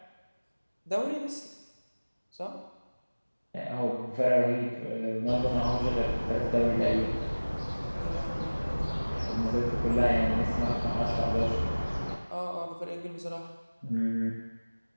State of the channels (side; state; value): both; inverted; correlation -1.00